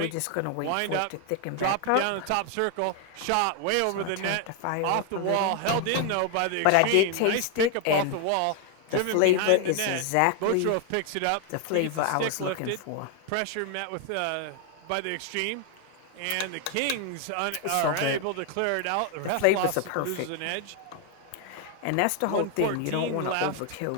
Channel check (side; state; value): both; different; correlation 0.01